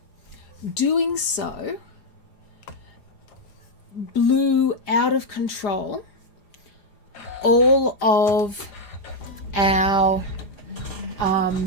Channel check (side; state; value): right; late; 4.9 ms